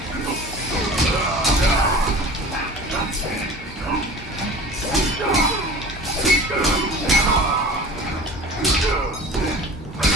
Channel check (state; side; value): normal; both; correlation 0.38